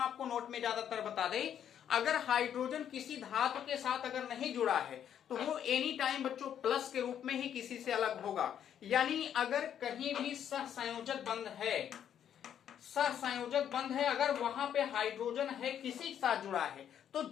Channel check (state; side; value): quieter; right; 9.4 dB